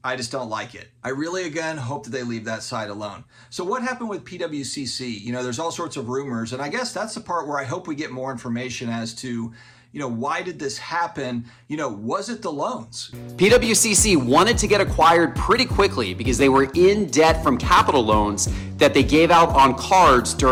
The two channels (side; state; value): both; identical; correlation 1.00